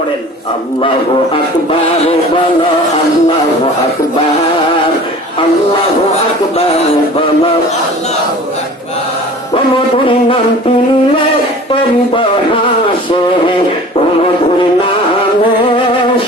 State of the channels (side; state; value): both; normal; correlation 0.43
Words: আল্লাহু আকবার বলো, আল্লাহু আকবার, আল্লাহু আকবার বলো, আল্লাহু আকবার। মধুর নাম তিলে হাসে, মধুর নামে